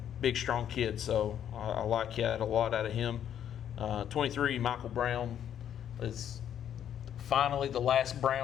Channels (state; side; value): quieter; right; 9.8 dB